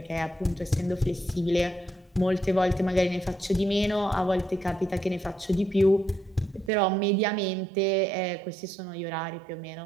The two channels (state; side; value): drops out; left; at 6.7 s